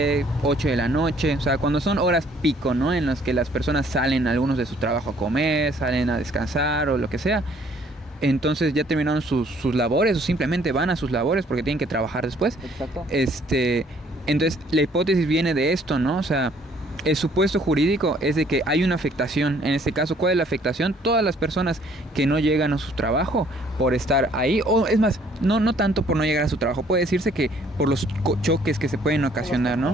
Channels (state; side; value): normal; both; correlation 0.61